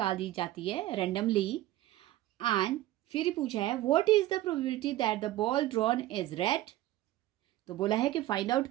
दी जाती है रैंडमली। एंड फिर पूछा है what is the probability that the ball drawn is red. तो बोला है कि फाइंड आउट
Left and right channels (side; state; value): left; quieter; 15.3 dB